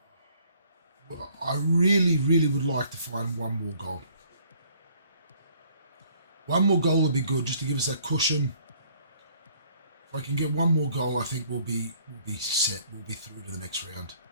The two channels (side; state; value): both; inverted; correlation -0.61